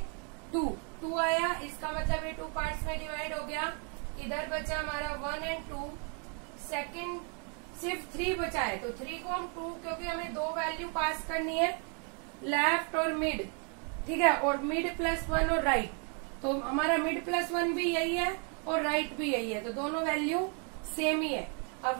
2, 2 आया, इसका मतलब ये 2 पार्ट्स में डिवाइड हो गया। इधर बचा हमारा 1 एंड 2, सेकंड सिर्फ 3 बचा है, तो 3 को हम 2, क्योंकि हमें 2 वैल्यू पास करनी है, लेफ्ट और मिड, ठीक है, और मिड +1 और राइट, तो हमारा मिड +1 भी यही है और राइट भी यही है, तो दोनों वैल्यू सेम ही है।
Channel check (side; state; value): left; quieter; 38.6 dB